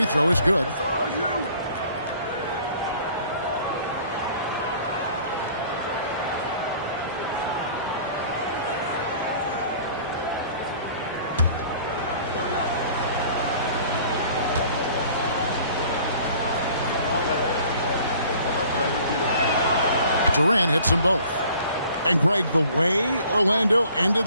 throw is good. Durant hits them both. And Greg, the way Orlando ended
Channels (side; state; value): both; inverted; correlation -0.52